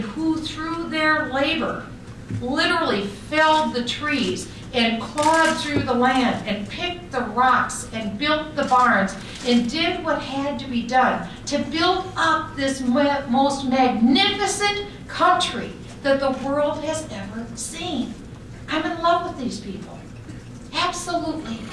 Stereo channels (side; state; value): both; identical; correlation 1.00